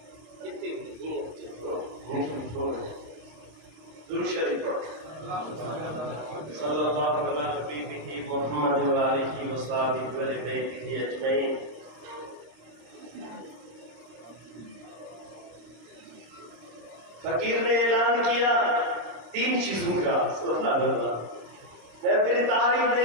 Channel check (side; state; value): left; late; 26 ms